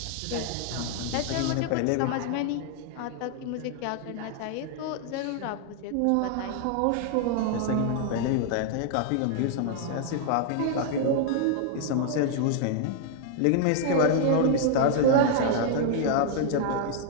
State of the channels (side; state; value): both; different; correlation 0.00